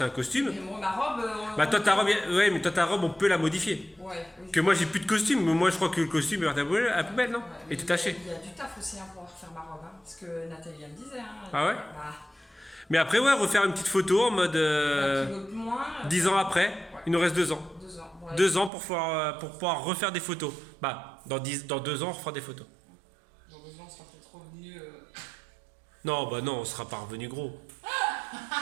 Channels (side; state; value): left; drops out; at 18.7 s